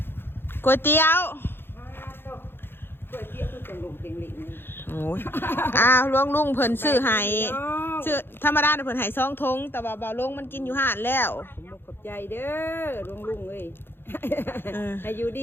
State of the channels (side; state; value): right; late; 0.10 ms